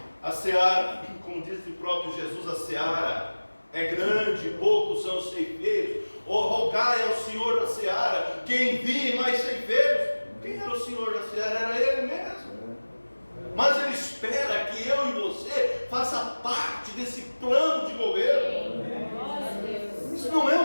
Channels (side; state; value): both; inverted; correlation -1.00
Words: A seara, como disse o próprio Jesus, a seara é grande, poucos são os ceifeiros. Rogai ao Senhor da seara que envie mais ceifeiros. Quem era o Senhor da seara? Era Ele mesmo. Mas Ele espera que eu e você faça parte desse plano de governo. Isso não é